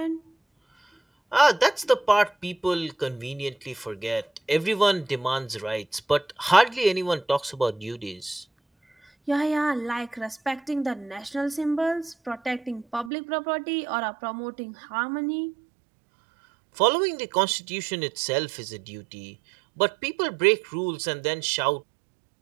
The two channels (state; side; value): drops out; left; at 13.1 s